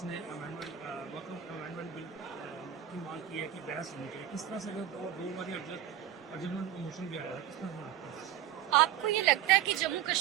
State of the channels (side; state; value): left; quieter; 10.8 dB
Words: نے وقف امینڈمنٹ بل کی مانگ کی ہے کہ بحث ہونی چاہیے. کس طرح سے اگر دو بار ارجنٹ موشن بھی آیا ہے, کس طرح سے لگتا ہے؟ آپ کو یہ لگتا ہے کہ جموں